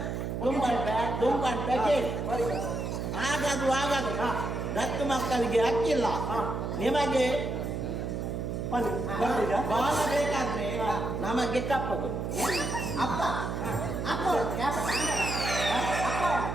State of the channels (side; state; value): right; noise; hum, 3 dB below the sound